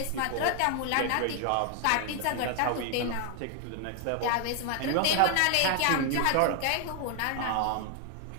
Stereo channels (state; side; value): different; both; correlation 0.00